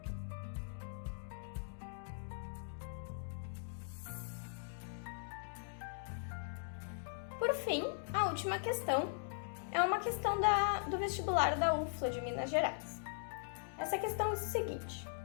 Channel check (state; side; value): silent; right; digital silence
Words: Por fim, a última questão é uma questão do vestibular da UFLA de Minas Gerais. Essa questão diz o seguinte: